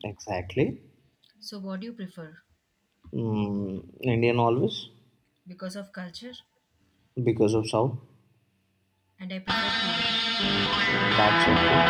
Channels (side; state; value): both; identical; correlation 1.00